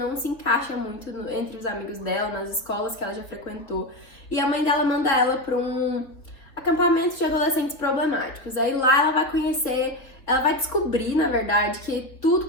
se encaixa muito entre os amigos dela, nas escolas que ela já frequentou. E a mãe dela manda ela para um acampamento de adolescentes problemáticos. Aí lá ela vai conhecer... Ela vai descobrir, na verdade, que tudo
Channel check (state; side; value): late; right; 3.4 ms